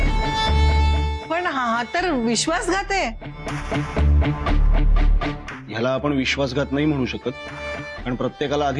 पण हा तर विश्वासघात आहे। ह्याला आपण विश्वासघात नाही म्हणू शकत, कारण प्रत्येकाला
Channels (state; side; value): identical; both; correlation 1.00